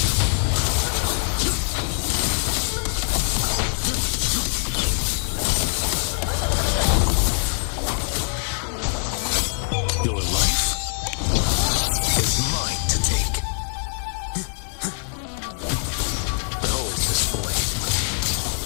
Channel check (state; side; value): silent; right; digital silence